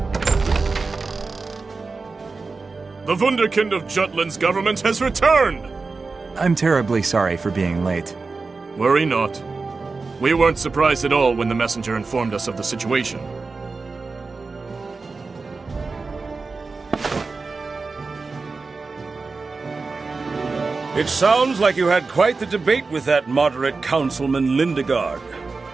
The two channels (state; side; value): quieter; left; 4.1 dB